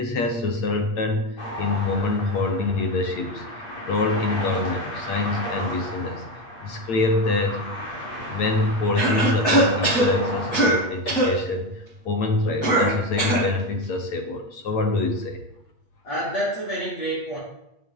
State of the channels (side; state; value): right; late; 7.9 ms